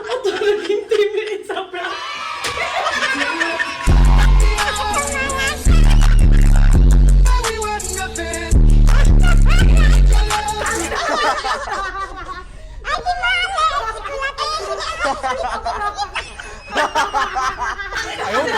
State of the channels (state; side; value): identical; both; correlation 1.00